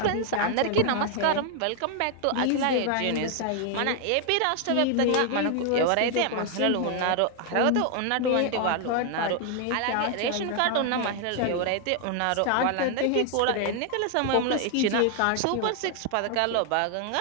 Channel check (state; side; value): different; both; correlation 0.00